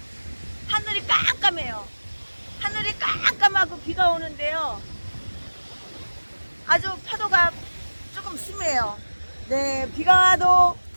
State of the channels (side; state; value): both; inverted; correlation -1.00